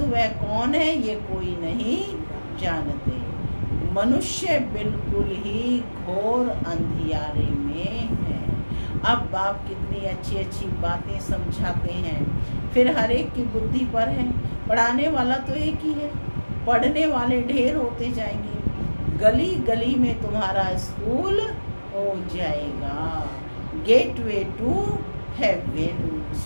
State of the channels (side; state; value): both; inverted; correlation -1.00